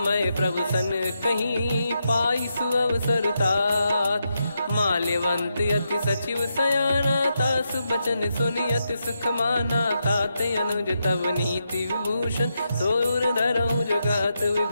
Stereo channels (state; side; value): inverted; both; correlation -0.84